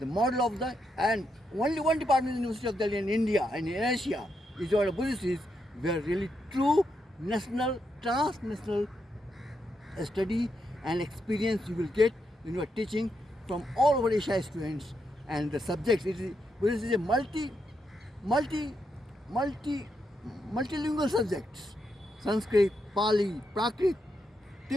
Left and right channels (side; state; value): both; normal; correlation 0.82